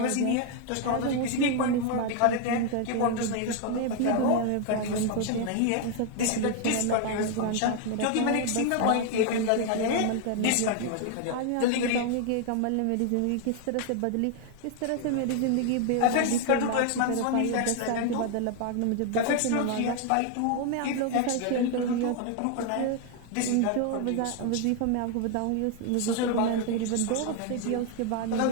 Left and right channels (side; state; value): both; different; correlation 0.00